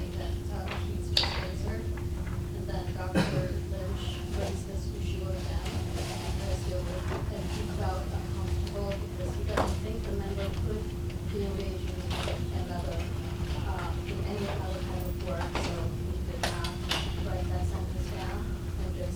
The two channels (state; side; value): identical; both; correlation 1.00